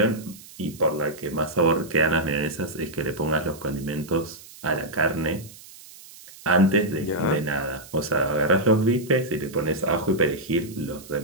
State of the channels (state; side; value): noise; right; hiss, 19 dB below the sound